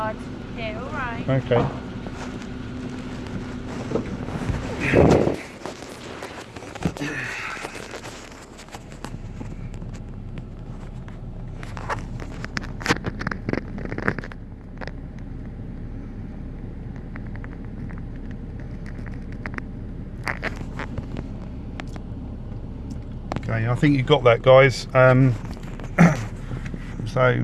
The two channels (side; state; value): both; identical; correlation 1.00